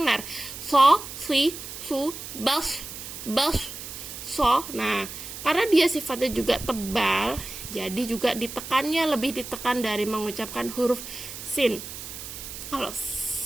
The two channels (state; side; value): noise; right; hiss, 10 dB below the sound